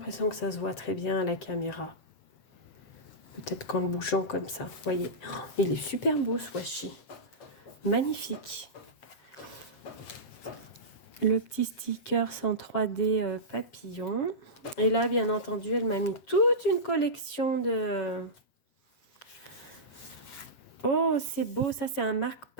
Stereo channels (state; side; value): late; right; 7.3 ms